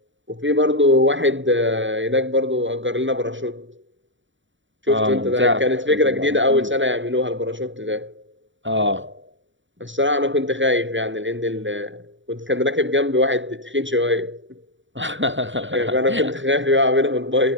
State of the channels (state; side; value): late; left; 0.55 ms